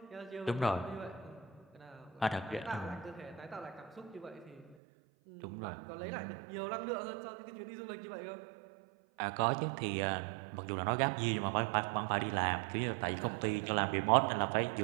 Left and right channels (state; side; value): drops out; left; at 4.8 s